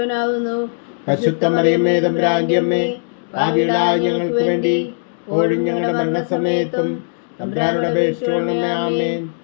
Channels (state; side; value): silent; right; digital silence